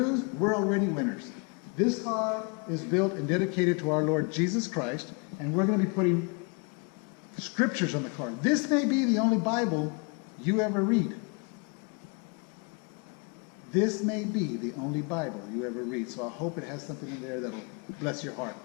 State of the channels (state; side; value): quieter; right; 33.9 dB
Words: we're already winners. This car is built and dedicated to our Lord Jesus Christ, and we're going to be putting scriptures on the car. This may be the only Bible you ever read. This may be the only Bible you ever read, so I hope it has something in there that will bless your heart.